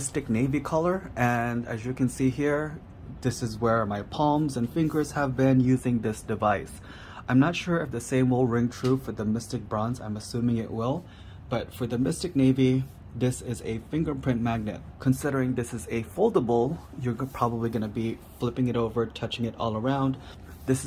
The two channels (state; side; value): identical; both; correlation 1.00